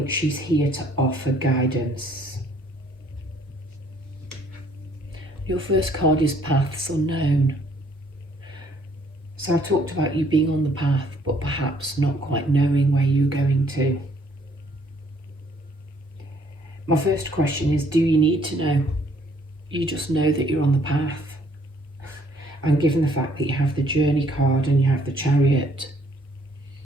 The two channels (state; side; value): normal; both; correlation 0.63